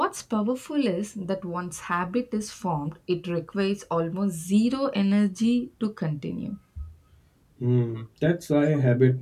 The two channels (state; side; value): identical; both; correlation 1.00